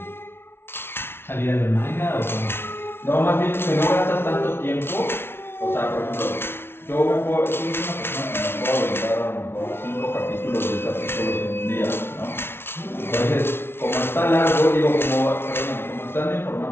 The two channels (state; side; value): late; right; 0.12 ms